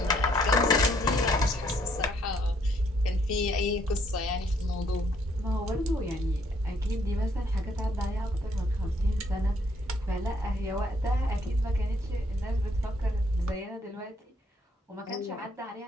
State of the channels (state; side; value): normal; both; correlation 0.68